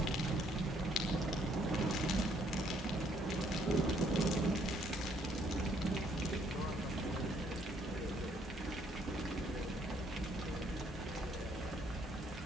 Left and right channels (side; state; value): both; normal; correlation 0.67